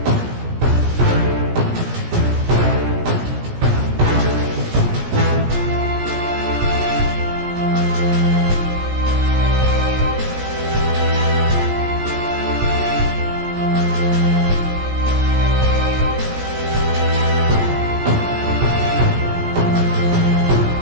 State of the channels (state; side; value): late; left; 17 ms